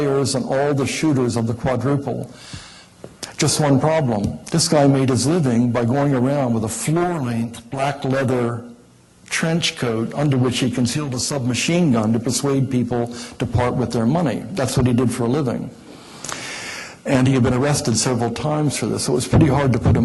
and all the shooters of the quadruple. Just one problem. This guy made his living by going around with a floor-length black leather trench coat under which he concealed a submachine gun to persuade people to part with their money. That's what he did for a living. And he had been arrested several times for this, so it was pretty hard to put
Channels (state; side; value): identical; both; correlation 1.00